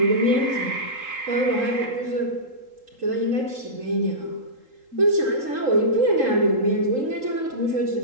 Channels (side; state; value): left; late; 3.8 ms